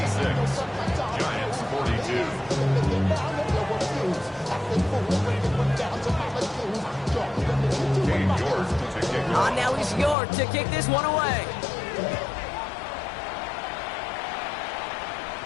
Giants 42. On now is York to kick this one away.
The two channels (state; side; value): drops out; right; at 10.2 s